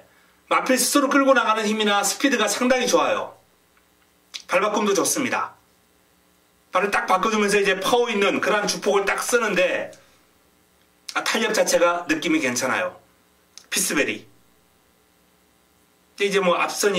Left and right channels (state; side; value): identical; both; correlation 1.00